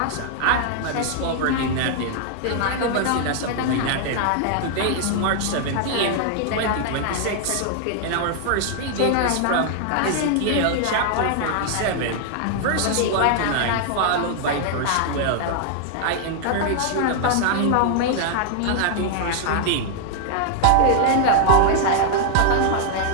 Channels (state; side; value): different; both; correlation 0.00